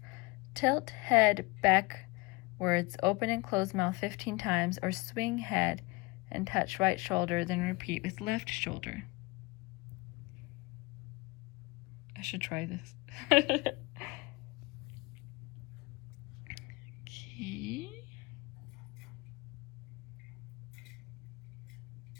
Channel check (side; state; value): right; quieter; 24.8 dB